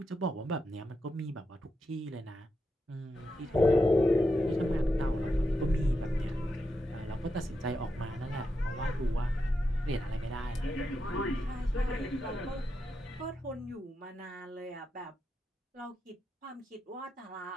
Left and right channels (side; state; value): both; normal; correlation 0.86